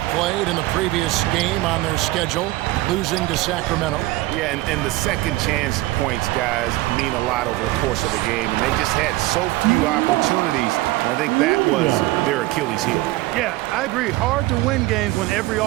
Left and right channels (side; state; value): left; quieter; 18.6 dB